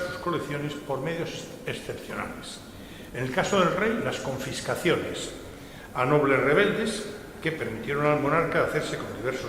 colecciones por medios excepcionales. En el caso del rey, las confiscaciones a nobles rebeldes que permitieron al monarca hacerse con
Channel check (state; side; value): identical; both; correlation 1.00